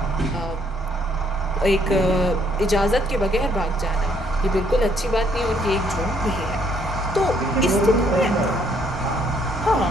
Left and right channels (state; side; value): normal; both; correlation 0.67